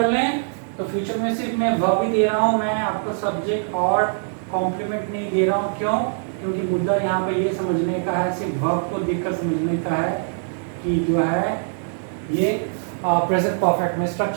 लें तो फ्यूचर में सिर्फ मैं वर्ब ही दे रहा हूं, मैं आपको सब्जेक्ट और कॉम्प्लीमेंट नहीं दे रहा हूं। क्यों, क्योंकि मुद्दा यहाँ पे ये समझने का है, सिर्फ वर्ब को देखकर समझने का है कि जो है ये प्रेजेंट परफेक्ट में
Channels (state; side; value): silent; left; digital silence